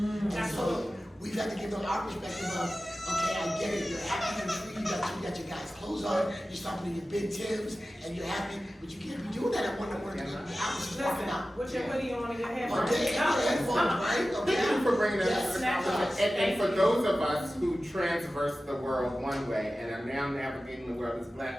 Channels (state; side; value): normal; both; correlation 0.95